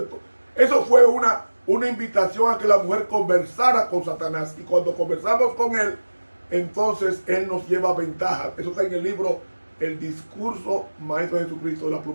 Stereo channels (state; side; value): inverted; both; correlation -1.00